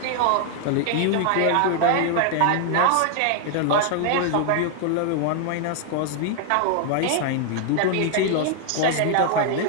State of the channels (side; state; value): both; different; correlation 0.00